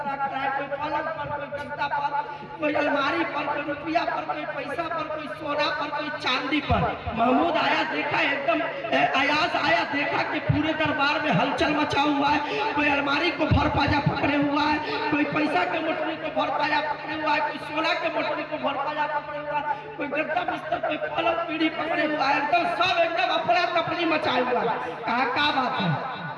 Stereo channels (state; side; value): identical; both; correlation 1.00